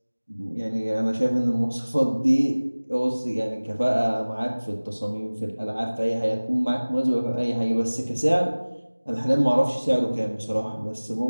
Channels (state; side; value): inverted; both; correlation -1.00